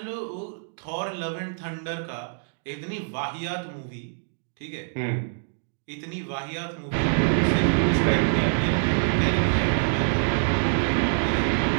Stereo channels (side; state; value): left; silent; 61 dB below the other